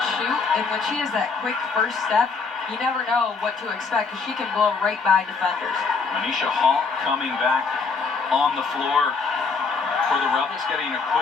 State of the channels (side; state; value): right; quieter; 4.7 dB